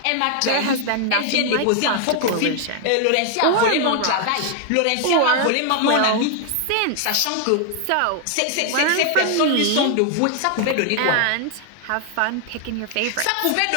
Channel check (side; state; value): both; different; correlation 0.00